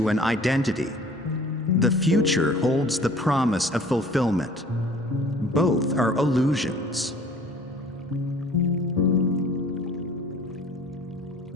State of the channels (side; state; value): both; normal; correlation 0.50